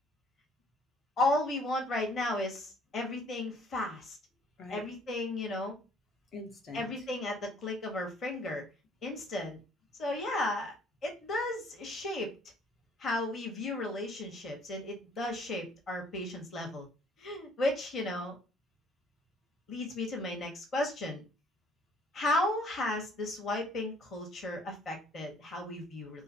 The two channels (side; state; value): both; normal; correlation 0.59